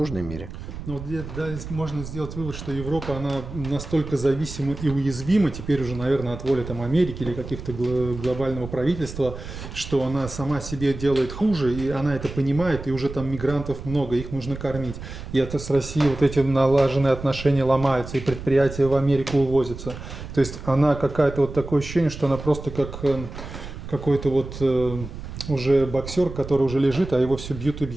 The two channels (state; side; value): noise; right; rumble, 11 dB below the sound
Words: мире. Ну, вот да, можно сделать вывод, что Европа, она настолько зависима и уязвима, теперь уже, наверное, от воли там, Америки или каких-то глобального правительства, что она сама себе делает хуже, и она это понимает, и уже там мигрантов много, их нужно кормить. И это с Россией вот эти налаженные отношения ломаются, и предприятия в Америку увозятся. То есть она какая-то вот такое ощущение, что она просто как какой-то вот уже боксер, который уже лежит, а его все бьют и